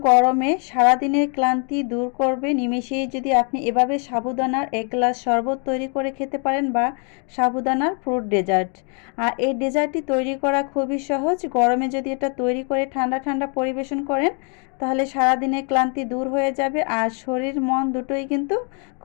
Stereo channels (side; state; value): right; quieter; 39.1 dB